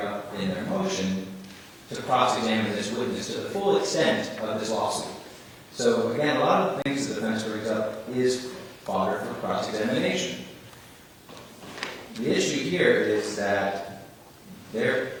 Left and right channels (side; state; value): both; identical; correlation 1.00